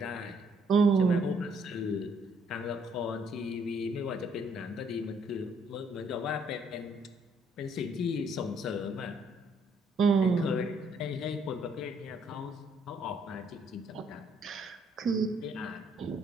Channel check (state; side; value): normal; both; correlation 0.67